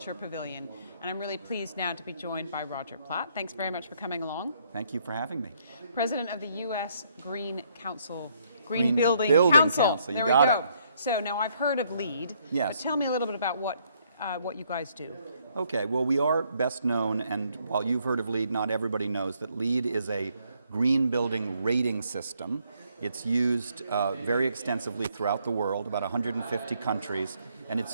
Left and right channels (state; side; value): inverted; both; correlation -0.70